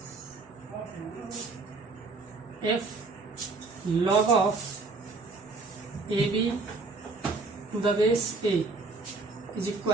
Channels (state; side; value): quieter; left; 3.7 dB